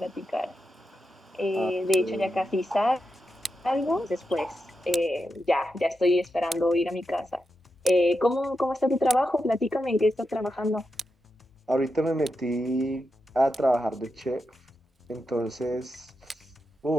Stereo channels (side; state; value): both; normal; correlation 0.88